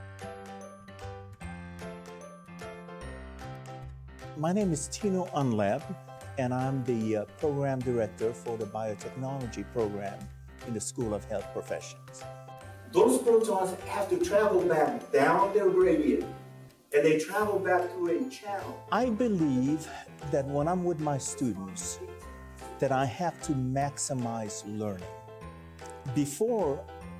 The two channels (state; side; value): identical; both; correlation 1.00